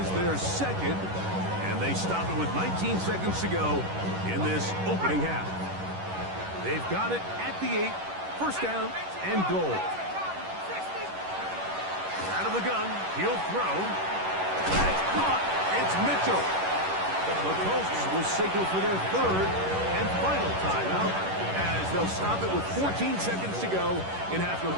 their second. And they stop it with 19 seconds to go in this opening half. They've got it at the 8, first down and goal. Out of the gun, he'll throw. That's caught. It's Mitchell. The Colts will signal for their third and final timeout, as they'll stop it with 14 seconds to go in half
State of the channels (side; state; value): left; late; 11 ms